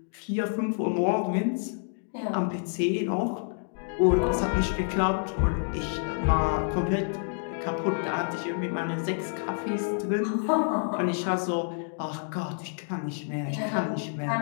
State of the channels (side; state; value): right; silent; digital silence